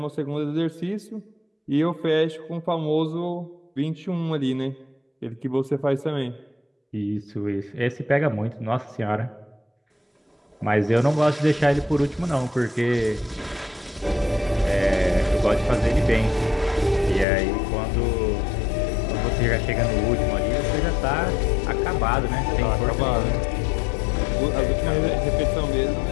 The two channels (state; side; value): drops out; right; at 17.2 s